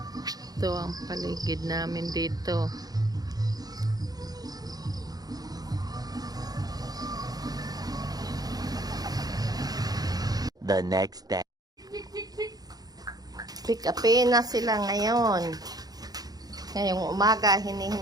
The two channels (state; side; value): late; left; 0.19 ms